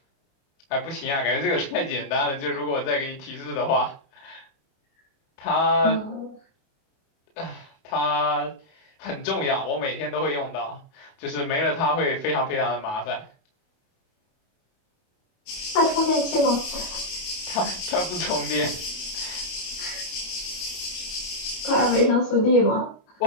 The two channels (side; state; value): right; late; 28 ms